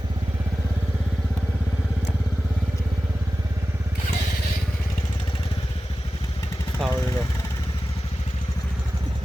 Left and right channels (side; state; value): both; normal; correlation 0.95